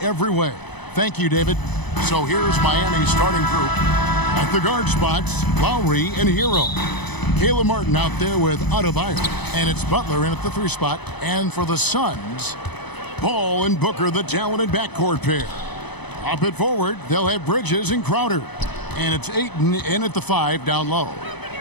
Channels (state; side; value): late; right; 0.99 ms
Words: way. Thank you, David. So here's Miami's starting group. At the guard spots, Lowry and Hero. Caleb Martin out there with Adebayo. And it's Butler in at the 3 spot. And for the Suns, Paul and Booker, the talented backcourt pair. Up at forward, they'll have Bridges and Crowder. And it's Ayton in at the 5 down low.